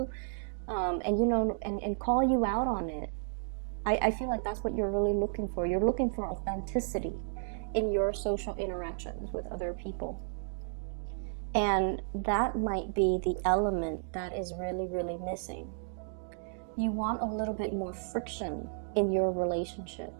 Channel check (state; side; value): silent; left; digital silence